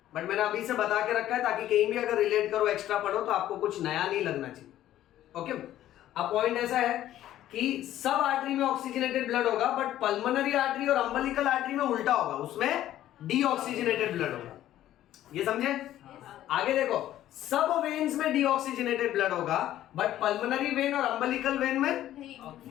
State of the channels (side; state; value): right; quieter; 12.9 dB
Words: बट मैंने अभी से बता के रखा है ताकि कहीं भी अगर रिलेट करो, एक्स्ट्रा पढ़ो, तो आपको कुछ नया नहीं लगना चाहिए। ओके, अब पॉइंट ऐसा है कि सब आर्टरी में ऑक्सीजनेटेड ब्लड होगा, बट पल्मोनरी आर्टरी और अम्बलिकल आर्टरी में उल्टा होगा, उसमें डीऑक्सीजनेटेड ब्लड होगा। ये समझे? आगे देखो, सब वेन्स में डीऑक्सीजनेटेड ब्लड होगा, बट पल्मोनरी वेन और अम्बलिकल वेन